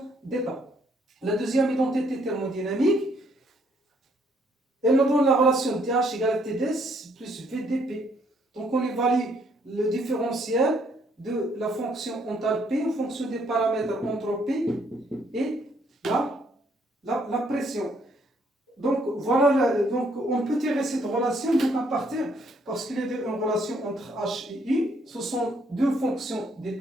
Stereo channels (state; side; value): normal; both; correlation 0.68